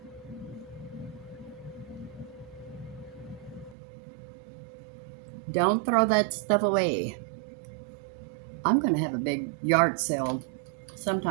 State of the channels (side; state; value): left; drops out; at 3.8 s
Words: Don't throw that stuff away. I'm going to have a big yard sale